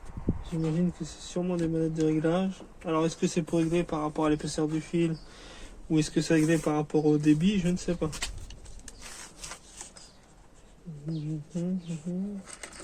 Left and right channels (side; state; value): both; identical; correlation 1.00